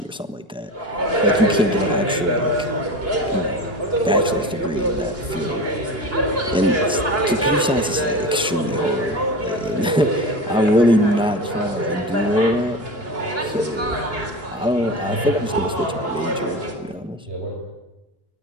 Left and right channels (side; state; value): both; normal; correlation 0.28